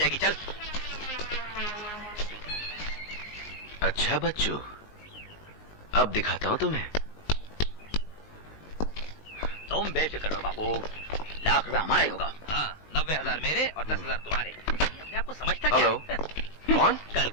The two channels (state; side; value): late; right; 19 ms